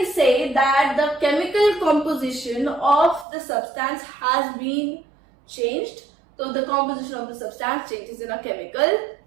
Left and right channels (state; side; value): drops out; left; at 3.2 s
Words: say that the chemical composition of the substance has been changed. So the composition of the substance changes in a chemical